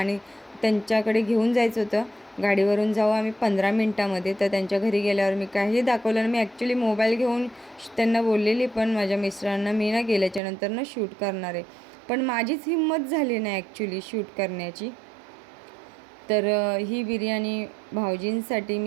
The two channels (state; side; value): drops out; left; at 10.4 s